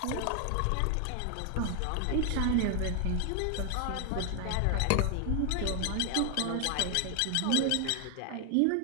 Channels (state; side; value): different; both; correlation 0.00